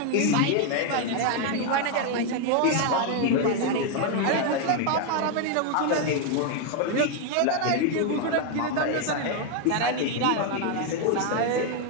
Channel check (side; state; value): both; different; correlation 0.01